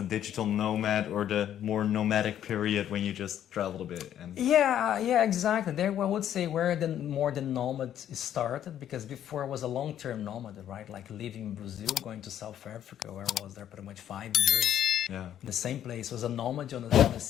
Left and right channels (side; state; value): right; quieter; 10.6 dB